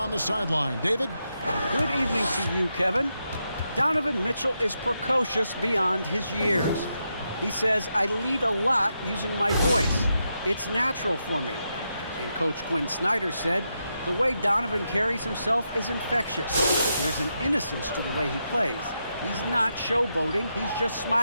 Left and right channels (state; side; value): inverted; both; correlation -0.84